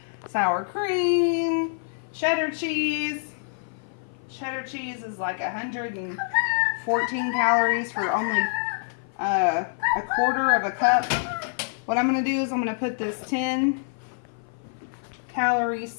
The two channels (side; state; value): right; silent; 55 dB below the other